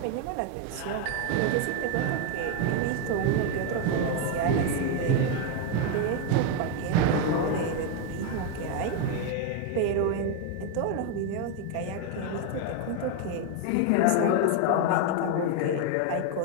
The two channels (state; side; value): different; both; correlation 0.01